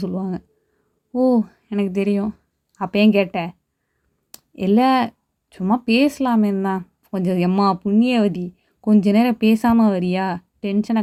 சொல்லுவாங்க." "ஓ! எனக்கு தெரியும். அப்ப ஏன் கேட்ட?" "இல்ல, சும்மா பேசலாமேன்னு தான்." கொஞ்சம் எம்மா புண்ணியவதி, கொஞ்ச நேரம் பேசாமல் வரியா, டென்ஷனை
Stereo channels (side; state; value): both; identical; correlation 1.00